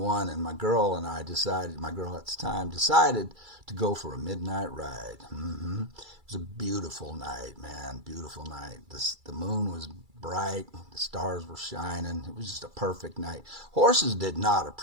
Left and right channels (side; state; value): left; late; 2.3 ms